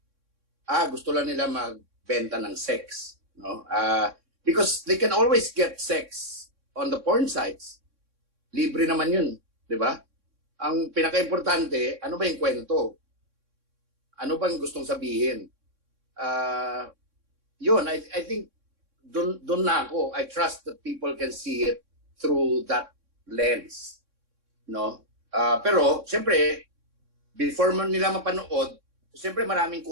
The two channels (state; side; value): late; left; 3.6 ms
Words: gusto lang nila magbenta ng sex, no? Because they can always get sex on the porn sites. Libre naman 'yun, 'di ba? Ang pinaka-importante, ano ba 'yung kwento? Ano bang gustong sabihin? Yun, I think doon na ako. I trust that people can see it through that lens, no? Pero siyempre, before man nila mapanood, siyempre maraming